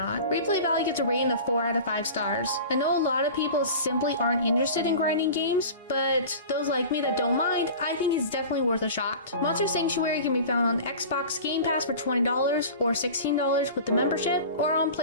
Replay value gets a rating of 4 out of 5 stars. I know a lot of people simply aren't interested in grinding games, but those like me that don't mind, I think it's definitely worth a shot. Monster Sanctuary can be found on Xbox Game Pass for $20 or $16 with the membership, or on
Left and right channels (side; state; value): both; inverted; correlation -0.37